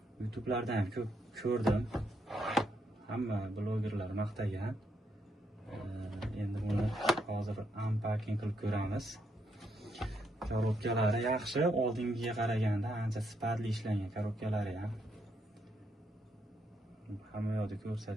YouTube'lardan ham ko'p ko'rdim. Hamma blogerlar maqtagan. Endi buni hozir unpacking qilib ko'ramiz. Korobkalari yaxshi, oldingiga qaraganda ancha sifatli ishlangan korobkalari ham. Hamma yoqda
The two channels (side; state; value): both; normal; correlation 0.76